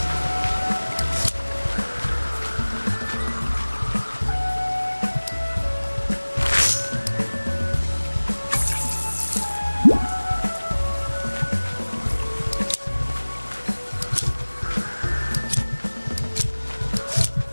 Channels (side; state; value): both; inverted; correlation -1.00